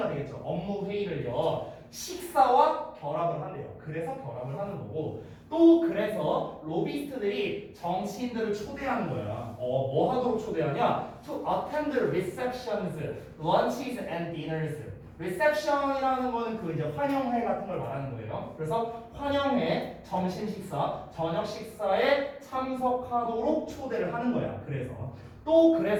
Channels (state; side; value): identical; both; correlation 1.00